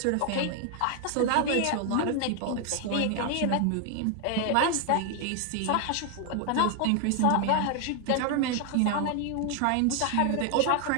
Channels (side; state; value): both; different; correlation 0.01